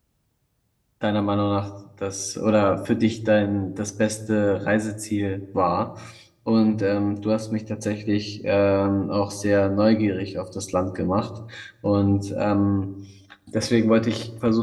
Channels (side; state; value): both; identical; correlation 1.00